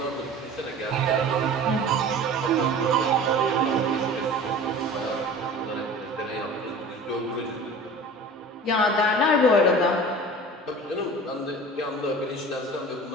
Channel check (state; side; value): normal; both; correlation 0.39